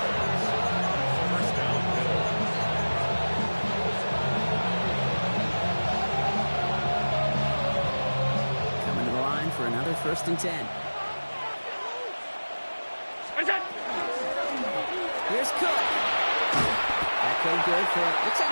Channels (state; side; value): inverted; both; correlation -1.00